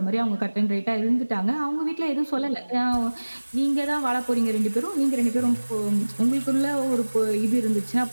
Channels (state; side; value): inverted; both; correlation -1.00